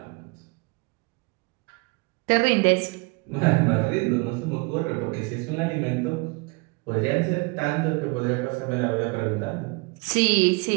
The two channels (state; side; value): quieter; left; 29.0 dB